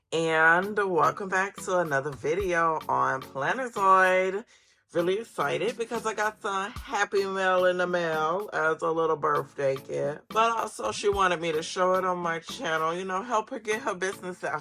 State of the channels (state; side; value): identical; both; correlation 1.00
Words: and welcome back to another video on Plannerzoid. Really excited because I got some happy mail in the mail as a little birthday gift. But also she wanted me to show it on my channel, you know, help her get her business